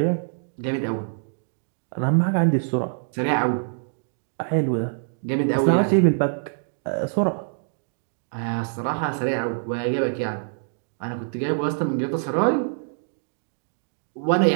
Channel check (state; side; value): silent; left; digital silence